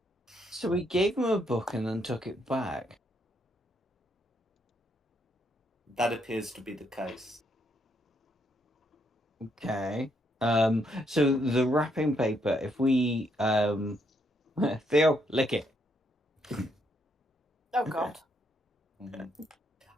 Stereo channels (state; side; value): normal; both; correlation 0.74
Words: So we gave him a book and then took it back. That appears to be the case. Okay. So the wrapping paper, if we Theo, lick it. Oh God. Mm-hmm.